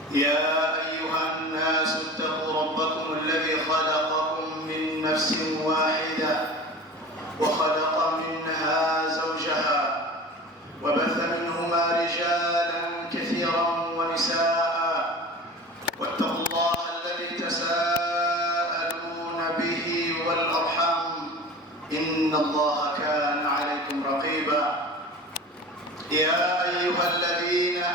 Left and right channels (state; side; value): normal; both; correlation 0.36